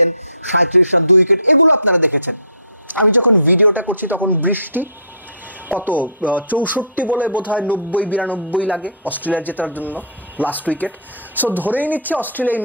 37 run 2 wicket, এগুলো আপনারা দেখেছেন। আমি যখন ভিডিওটা করছি তখন দৃষ্টি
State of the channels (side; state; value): both; inverted; correlation -0.43